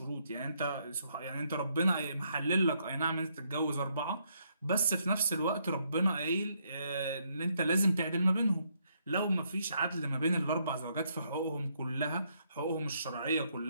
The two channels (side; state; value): both; inverted; correlation -0.74